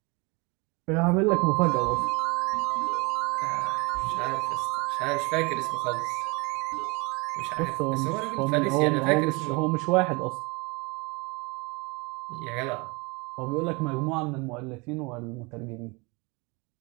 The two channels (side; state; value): left; quieter; 27.7 dB